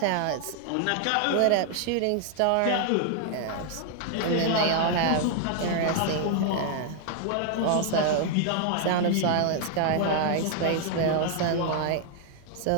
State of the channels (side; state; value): both; different; correlation 0.00